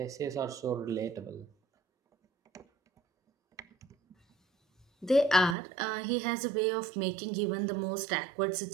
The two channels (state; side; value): drops out; left; at 5.6 s